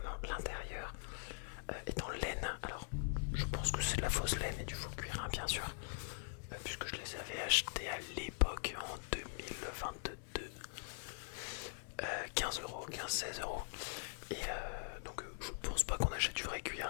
l'intérieur est en laine. Alors, je pense que c'est de la fausse laine et du faux cuir, hein, bien sûr. Puisque je les avais achetés à l'époque en 2022. 15 euros, 15-16 euros. Et donc, je pense pas qu'on achète du vrai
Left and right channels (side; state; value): right; silent; digital silence